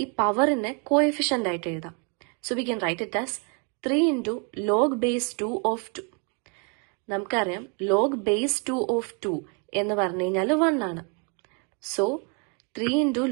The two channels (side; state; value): left; quieter; 35.9 dB